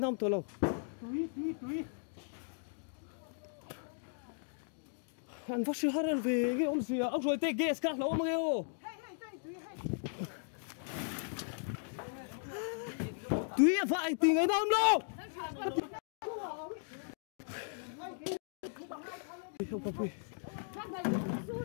tôi lâu túi anh phát sư hát về cái ông gì ông rồi tê ghê các lâu mà ghê ô túi phải thì ngày năm đâu không có gì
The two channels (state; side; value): silent; right; digital silence